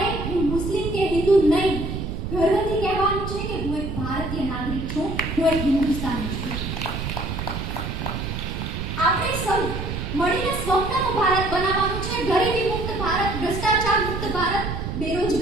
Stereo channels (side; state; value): right; noise; rumble, 4 dB below the sound